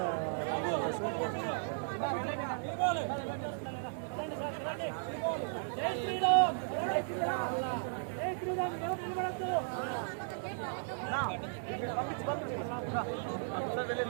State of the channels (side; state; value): left; silent; digital silence